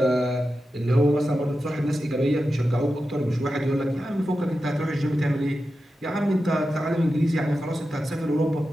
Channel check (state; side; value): normal; both; correlation 0.91